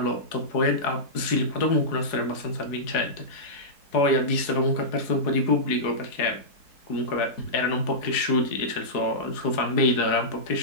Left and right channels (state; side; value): late; right; 4.7 ms